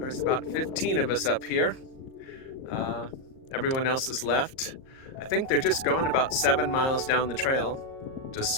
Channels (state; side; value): late; right; 38 ms